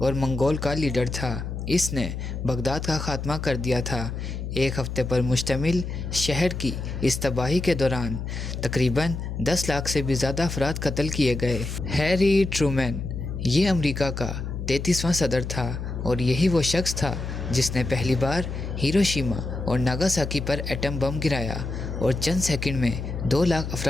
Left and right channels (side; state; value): left; noise; hum, 5 dB below the sound